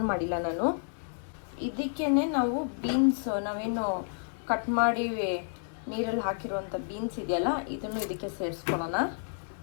ಮಾಡಿಲ್ಲ ನಾನು. ಇದಕ್ಕೇನೆ ನಾವು ಬೀನ್ಸ್, ನಾವೇನು ಕಟ್ ಮಾಡಿ ನೀರಲ್ಲಿ ಹಾಕಿರುವಂಥ ಬೀನ್ಸ್ ಇದೆಯಲ್ಲ, ಇದನ್ನು ಇದಕ್ಕೆ ಸೇರಿಸ್ಕೊಳ್ಳೋಣ.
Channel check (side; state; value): right; silent; digital silence